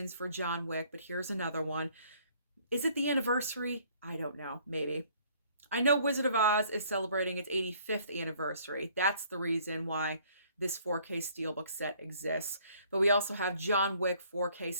for John Wick, but here's another one. Is it the anniversary? I don't know. Maybe. I know Wizard of Oz is celebrating its 85th anniversary. That's the reason why this 4K Steelbook set exists. But we also have John Wick 4K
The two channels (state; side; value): inverted; both; correlation -0.60